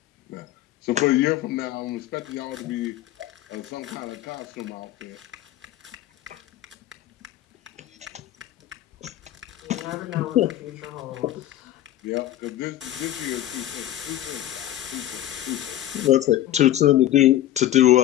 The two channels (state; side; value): quieter; right; 13.4 dB